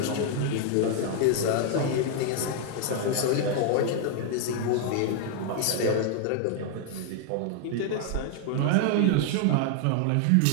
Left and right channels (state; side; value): different; both; correlation 0.00